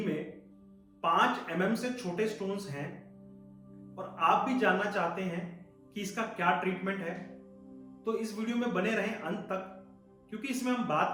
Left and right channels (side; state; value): both; identical; correlation 1.00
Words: में 5 mm से छोटे स्टोन्स हैं और आप भी जानना चाहते हैं कि इसका क्या ट्रीटमेंट है? तो इस वीडियो में बने रहें अंत तक, क्योंकि इसमें हम